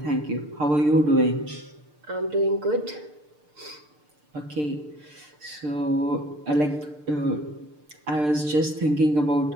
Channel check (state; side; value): late; left; 6.7 ms